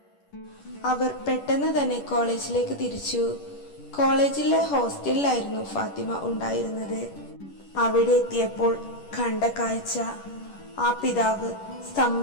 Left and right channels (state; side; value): late; right; 10 ms